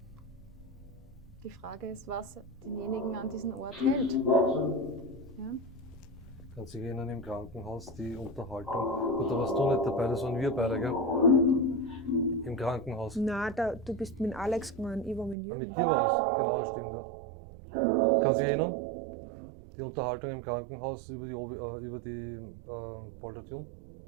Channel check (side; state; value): left; drops out; at 15.4 s